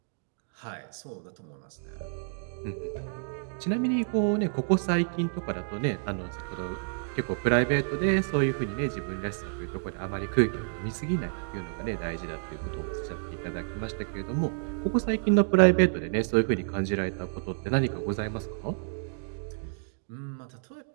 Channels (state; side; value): silent; left; digital silence